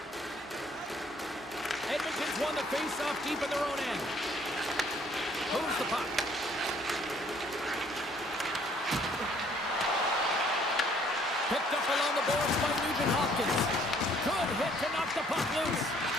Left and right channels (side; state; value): both; normal; correlation 0.61